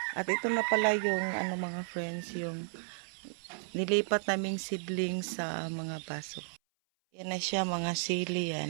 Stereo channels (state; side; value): silent; left; 55 dB below the other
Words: At ito na pala yung mga friends, yung nilipat naming seedling sa mga baso. Yan na siya, mga sili